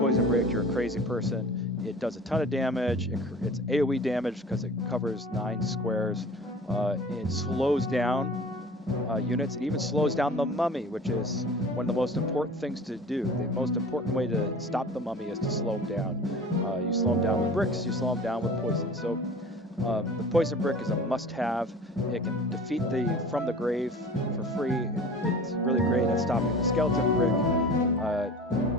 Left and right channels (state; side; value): normal; both; correlation 0.41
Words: brick, you're a crazy person. It does a ton of damage. It's AoE damage because it covers 9 squares. It slows down units. It even slows down the mummy, which is one of the most important things to do. The most important way to stop the mummy is to slow him down. You slow him down with bricks. You slow him down with poison. So the poison brick is a must-have. It can defeat the from the grave for free. It's really great at stopping the skeleton brick.